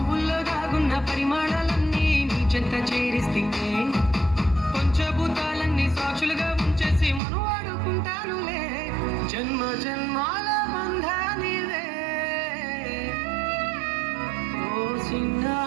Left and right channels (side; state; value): left; drops out; at 7.2 s